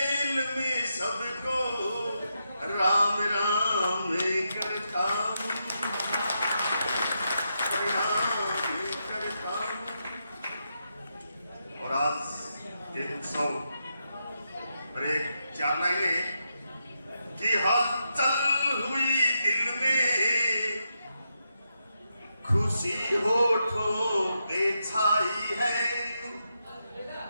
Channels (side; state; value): both; inverted; correlation -0.84